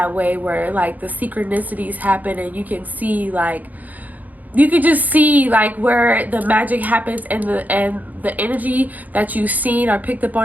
way, where like the synchronicities happen, and you can just see like where the magic happens, and the energy that you've seen or picked up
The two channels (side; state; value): left; late; 0.080 ms